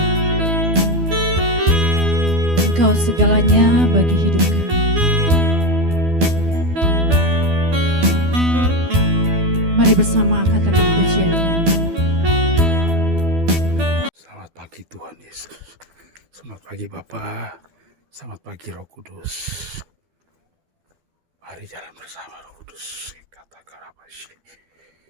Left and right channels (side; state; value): left; late; 12 ms